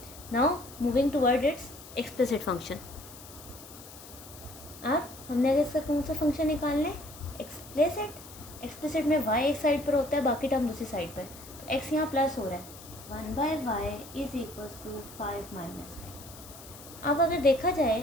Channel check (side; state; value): left; noise; hiss, 17 dB below the sound